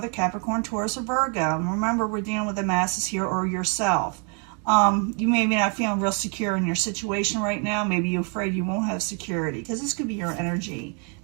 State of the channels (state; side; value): quieter; left; 39.3 dB